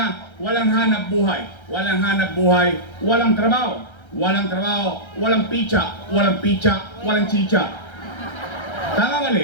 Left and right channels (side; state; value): right; late; 1.3 ms